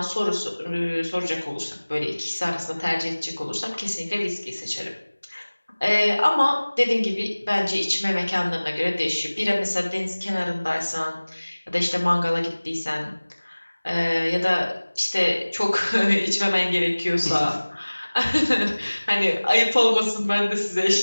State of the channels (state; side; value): inverted; both; correlation -1.00